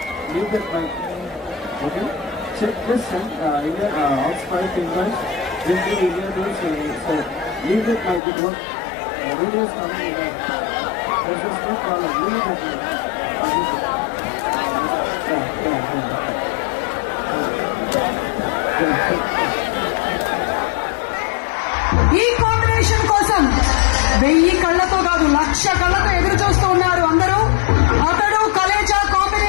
that mic. Okay. Check this and India outside invite. This is India doing so. Leave that mic. It won't. Video is coming in there. There's no problem. Leave that mic. ఈ combination కోసం 1000 కళ్ళతో కాదు 1,00,000 కళ్ళతో ఎదురు చూస్తూ ఉన్నారు అందరూ. అతడు కలేజా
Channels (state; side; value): drops out; right; at 8.2 s